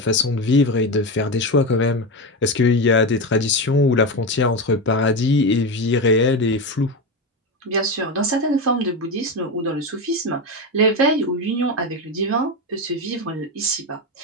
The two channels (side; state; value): both; normal; correlation 0.16